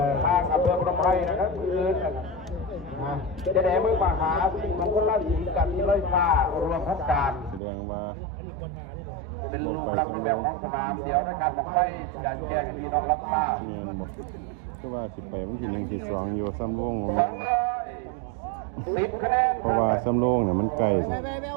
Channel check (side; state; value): left; drops out; at 7.6 s